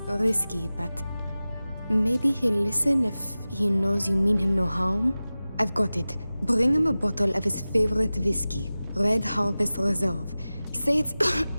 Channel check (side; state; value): both; inverted; correlation -0.97